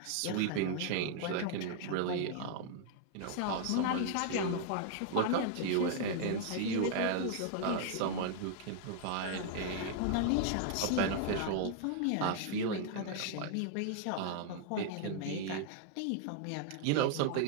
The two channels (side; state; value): both; different; correlation 0.00